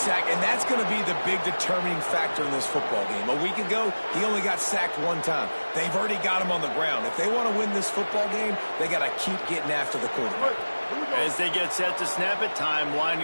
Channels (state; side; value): inverted; both; correlation -1.00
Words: and that's going to be the big determining factor in this football game. A week ago, he only got sacked 1 time. They've already got him on the ground. If they want to win this football game, they got to keep getting after the quarterback. As they get set to snap it, time